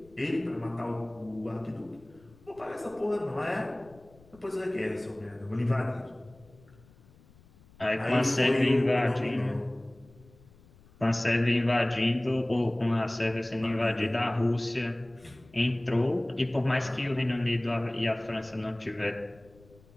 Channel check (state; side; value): noise; left; rumble, 26 dB below the sound